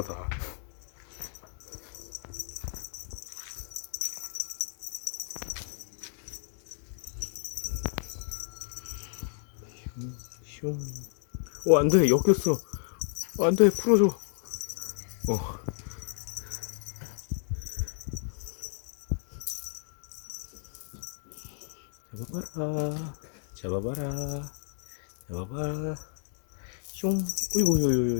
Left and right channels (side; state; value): right; silent; 57 dB below the other